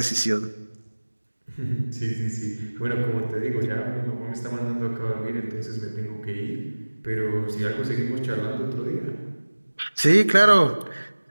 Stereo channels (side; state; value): both; inverted; correlation -1.00